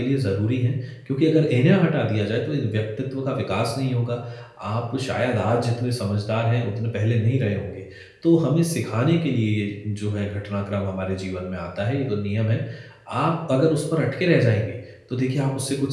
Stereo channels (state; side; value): identical; both; correlation 1.00